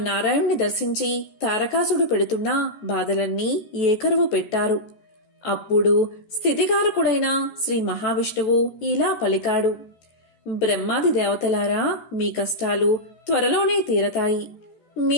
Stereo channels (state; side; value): late; right; 14 ms